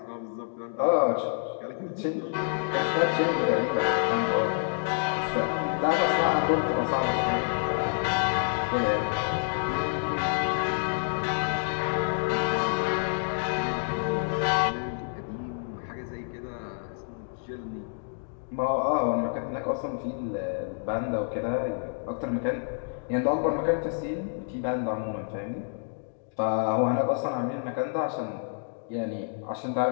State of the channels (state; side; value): silent; right; digital silence